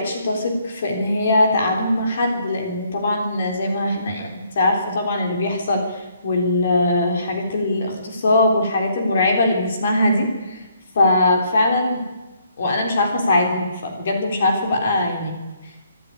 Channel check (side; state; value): both; inverted; correlation -0.69